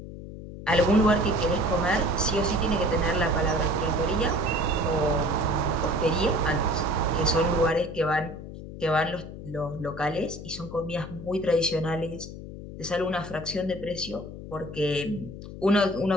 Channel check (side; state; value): left; noise; hum, 12 dB below the sound